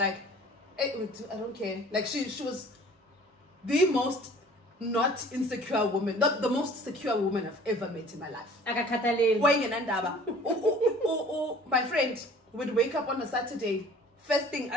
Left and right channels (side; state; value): both; normal; correlation 0.49